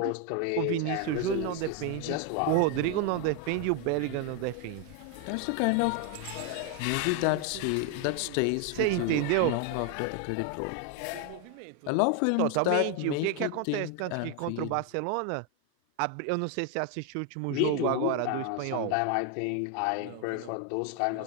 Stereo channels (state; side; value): different; both; correlation 0.01